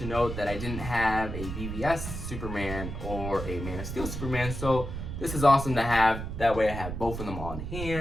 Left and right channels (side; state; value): right; noise; rumble, 6 dB below the sound